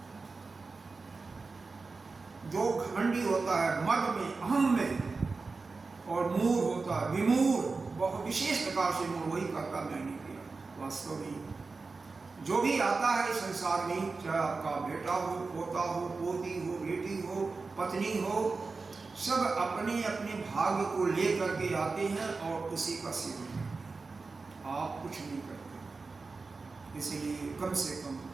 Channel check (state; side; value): quieter; left; 4.1 dB